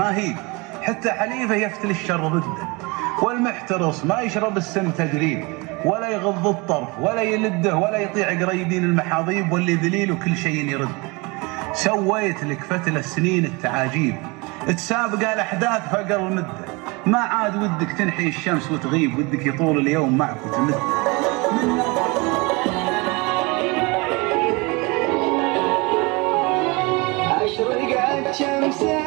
هي، حتى حليفه يفتل الشر ضده. والمحترص ما يشرب السم تجريب، ولا يغض الطرف ولا يلده، ولا يطيع قريبين المحاضيب. واللي ذليل وكل شيء يرد. سويت لك فتل السنين التعاجيب، تسابق الاحداث فقر المده. ما عاد ودك تنحي الشمس وتغيب، ودك يطول اليوم معك وتمد. أشرقت شمس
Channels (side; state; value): left; quieter; 26.7 dB